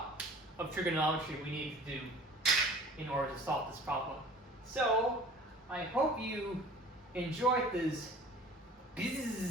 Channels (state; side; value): normal; both; correlation 0.46